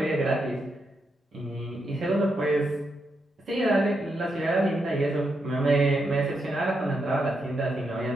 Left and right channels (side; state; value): both; normal; correlation 0.83